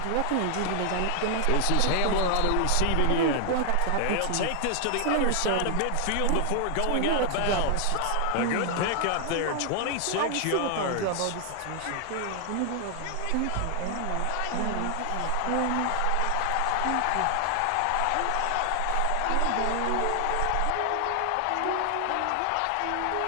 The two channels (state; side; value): different; both; correlation 0.00